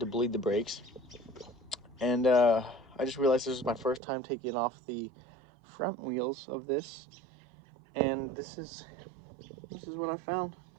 bleed the brakes, and I just realized this was my first time taking off the front wheels of this, and this is what I found.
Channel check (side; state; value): left; drops out; at 4.0 s